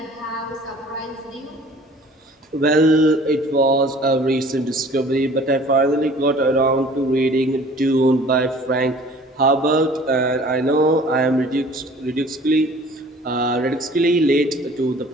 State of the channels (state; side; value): normal; both; correlation 0.49